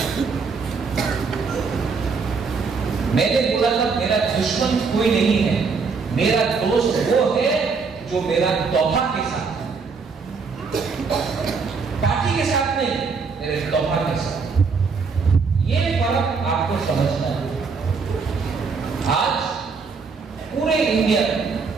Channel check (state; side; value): quieter; left; 5.0 dB